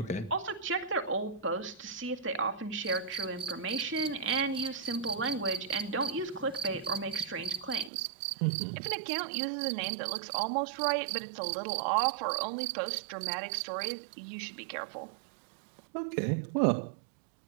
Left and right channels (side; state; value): left; drops out; at 7.9 s